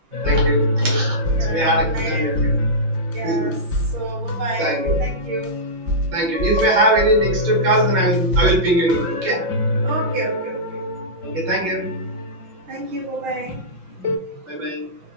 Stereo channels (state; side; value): late; left; 5.8 ms